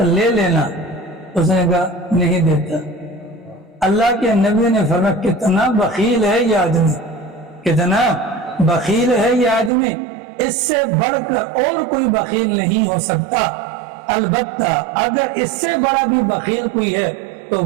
لینا، اس نے کہا نہیں دیتا۔ اللہ کے نبی نے فرمایا کتنا بخیل ہے یہ آدمی، کتنا بخیل ہے یہ آدمی، اس سے بڑھ کر اور کوئی بخیل نہیں ہو سکتا، البتہ اگر اس سے بڑا بھی بخیل کوئی ہے تو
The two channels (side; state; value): left; drops out; at 9.7 s